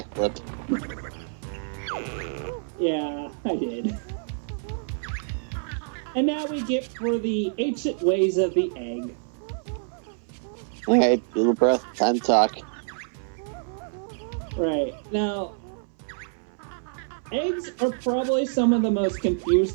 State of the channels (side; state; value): left; silent; 60 dB below the other